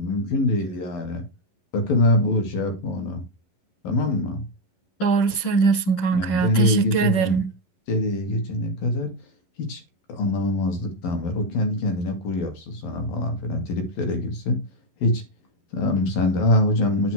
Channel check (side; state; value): right; late; 10 ms